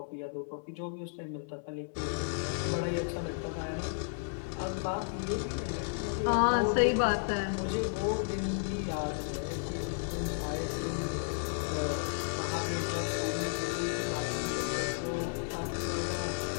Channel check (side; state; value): right; silent; 56 dB below the other